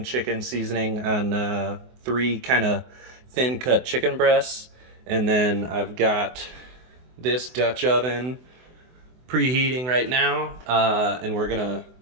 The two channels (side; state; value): left; late; 24 ms